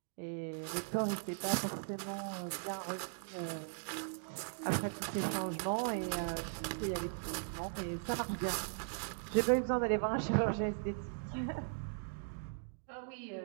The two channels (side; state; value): left; silent; digital silence